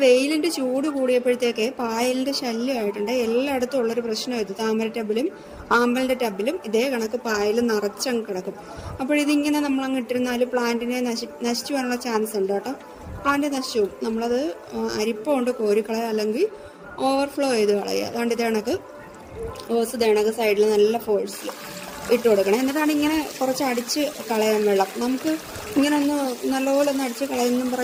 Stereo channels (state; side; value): identical; both; correlation 1.00